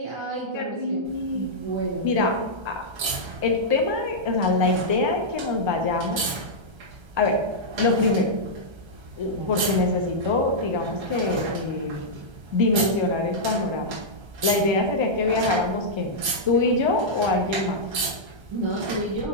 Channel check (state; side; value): late; left; 1.3 ms